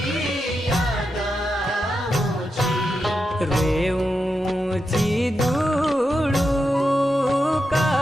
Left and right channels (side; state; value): both; normal; correlation 0.87